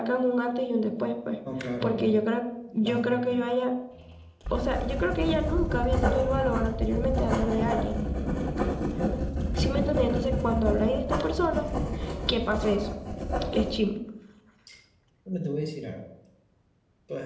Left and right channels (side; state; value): both; identical; correlation 1.00